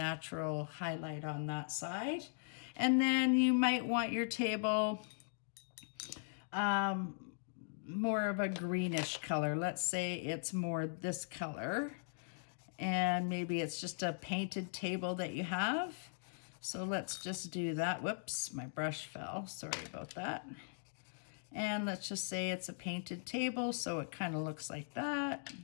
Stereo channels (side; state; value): right; silent; digital silence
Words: highlight on that side. And then you might want your table more of a greenish color. Let's say it's more this color, and maybe it's just a painted table that you have. So let's just do that. Whoops, my brush fell. Sorry about that. And let's just say it's a painted table, so it kind of looks like that.